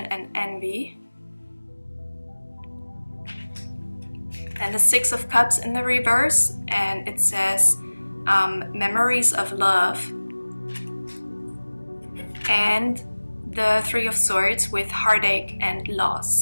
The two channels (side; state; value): both; inverted; correlation -1.00